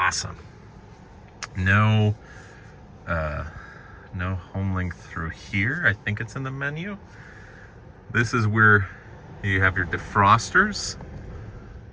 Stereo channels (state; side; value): identical; both; correlation 1.00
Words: No home link through here. I think it's in the menu. This is where you have your defrosters,